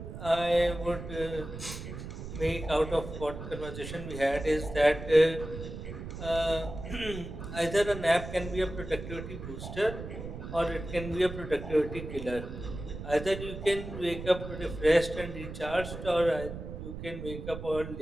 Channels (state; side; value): noise; right; rumble, 9 dB below the sound